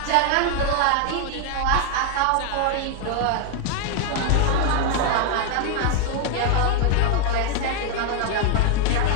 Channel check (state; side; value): different; both; correlation 0.00